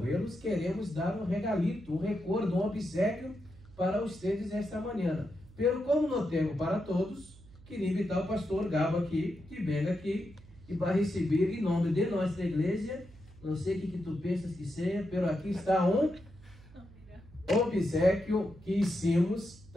queremos dar um regalito, um recordo, um obsequio para vocês esta manhã. Pero como não temos para todos, queria invitar o pastor Gabo aqui, que venha aqui e vai receber em nome de nossa igreja. Não sei o que tu pensas que seja, pero aqui está um obsequio que hicimos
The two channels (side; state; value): right; noise; hum, 22 dB below the sound